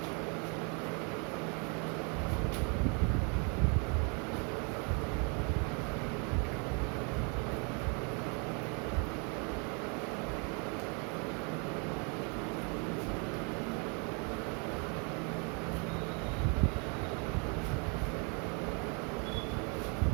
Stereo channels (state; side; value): quieter; left; 34.9 dB